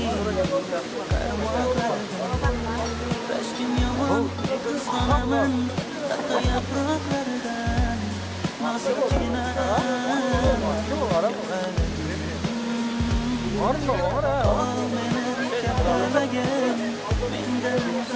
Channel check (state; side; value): identical; both; correlation 1.00